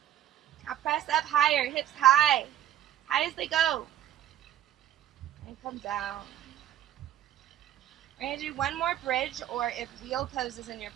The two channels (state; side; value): quieter; left; 11.7 dB